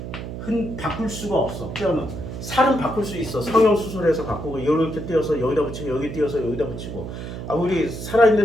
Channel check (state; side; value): noise; right; hum, 8 dB below the sound